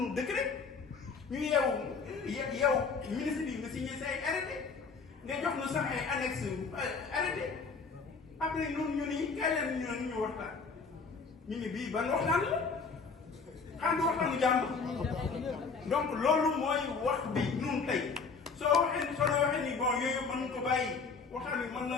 décret ñu yeewu ministre bi nga signé say arrêté nga jox nu sax ay annexe arrêté après noonu ñu ni kay leen ñu waxtaan ñu ni bii ban waxtaan la xam nga waxtaanu jàmm donc loolu mooy wax bi ñun tey soo waxee ni bon yooyu mën ko bàyyi waxtaan bi mën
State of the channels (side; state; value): right; quieter; 4.9 dB